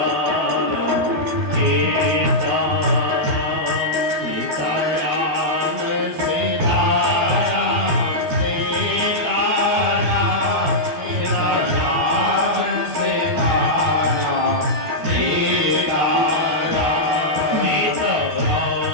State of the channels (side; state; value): left; late; 12 ms